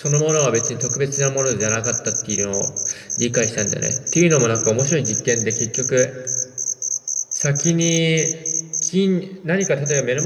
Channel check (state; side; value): identical; both; correlation 1.00